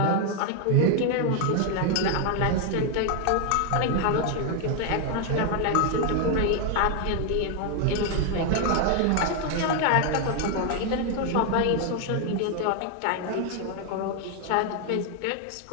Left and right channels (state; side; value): different; both; correlation 0.01